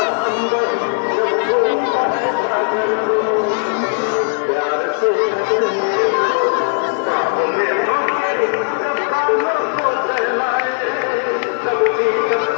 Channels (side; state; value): right; silent; digital silence